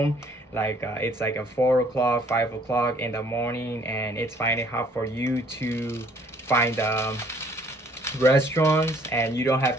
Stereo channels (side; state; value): both; normal; correlation 0.60